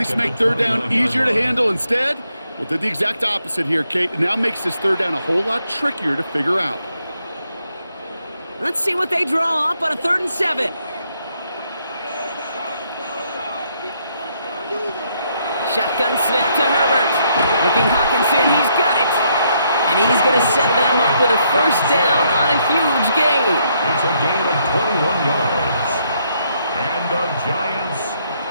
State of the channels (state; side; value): inverted; both; correlation -0.73